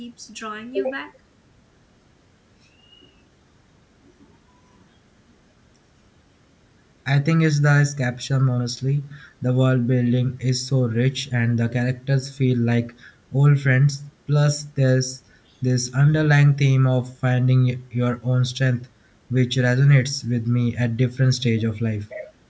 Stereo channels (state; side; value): identical; both; correlation 1.00